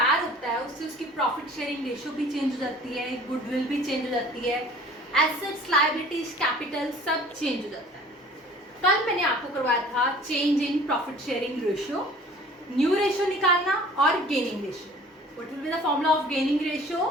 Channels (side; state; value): both; normal; correlation 0.48